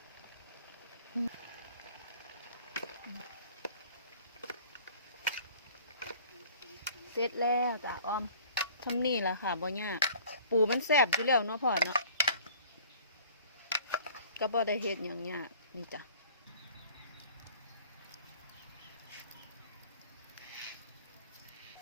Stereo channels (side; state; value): both; inverted; correlation -0.50